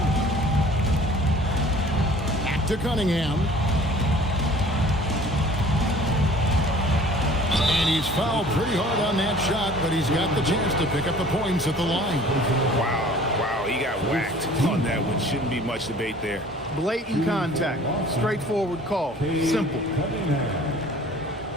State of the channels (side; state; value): both; normal; correlation 0.49